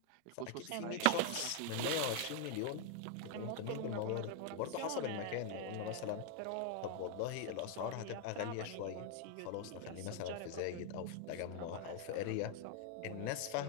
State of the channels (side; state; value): both; different; correlation 0.00